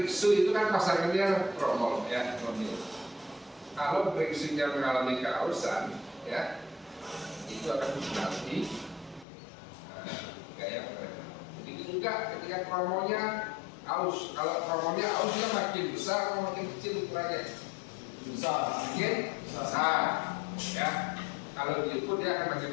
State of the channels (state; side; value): drops out; right; at 9.2 s